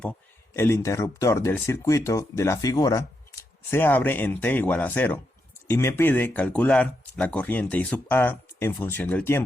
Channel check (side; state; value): both; normal; correlation 0.83